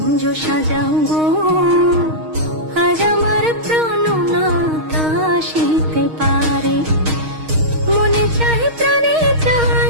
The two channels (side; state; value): left; late; 6.4 ms